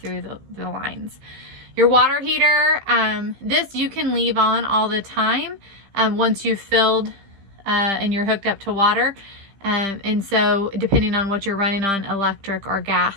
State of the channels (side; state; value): left; late; 15 ms